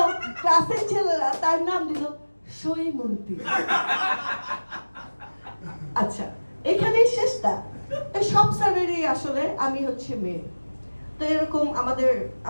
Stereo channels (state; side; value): inverted; both; correlation -1.00